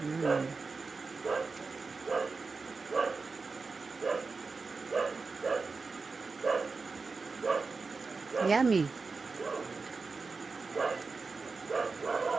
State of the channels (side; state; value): left; quieter; 4.3 dB